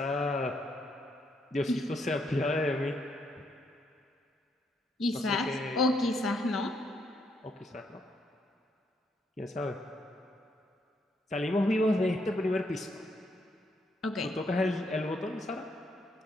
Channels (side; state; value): both; normal; correlation 0.76